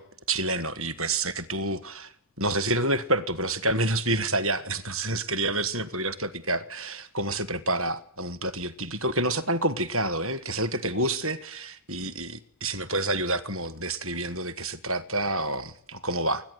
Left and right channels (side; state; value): both; normal; correlation -0.18